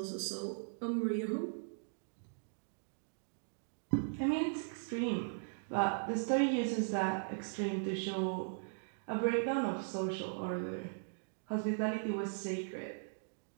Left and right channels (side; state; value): left; silent; digital silence